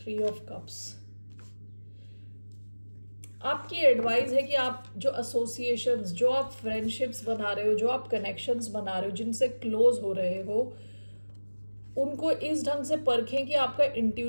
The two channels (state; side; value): inverted; both; correlation -1.00